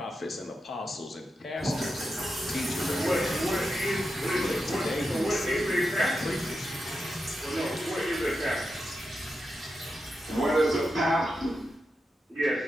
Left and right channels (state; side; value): normal; both; correlation 0.88